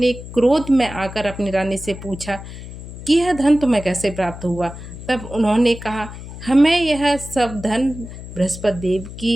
क्रोध में आकर अपनी रानी से पूछा कि यह धन तुम्हें कैसे प्राप्त हुआ? तब उन्होंने कहा, हमें यह सब धन बृहस्पति देव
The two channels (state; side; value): noise; left; hum, 12 dB below the sound